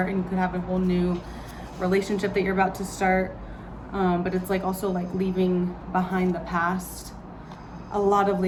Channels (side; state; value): both; identical; correlation 1.00